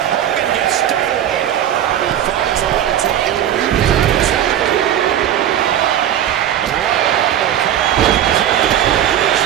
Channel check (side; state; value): left; quieter; 10.8 dB